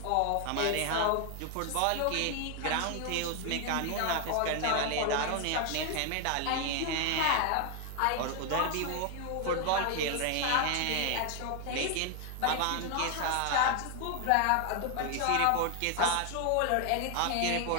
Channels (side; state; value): both; different; correlation 0.00